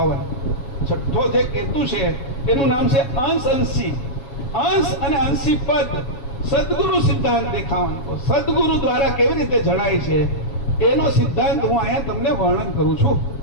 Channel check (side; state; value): right; late; 7.3 ms